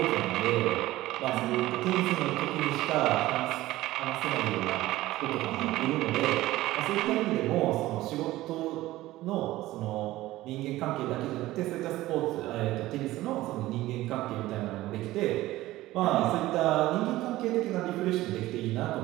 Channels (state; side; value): quieter; left; 16.7 dB